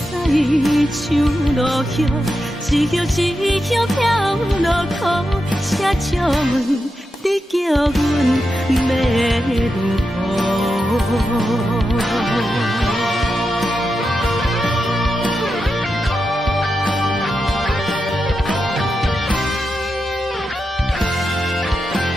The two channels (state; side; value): normal; both; correlation 0.88